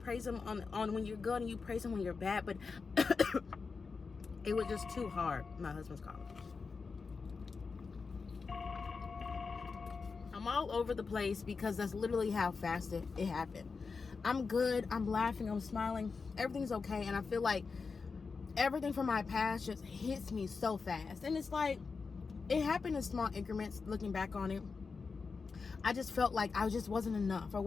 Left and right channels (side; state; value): right; quieter; 4.8 dB